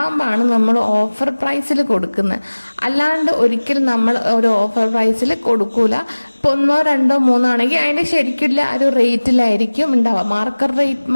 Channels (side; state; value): both; inverted; correlation -1.00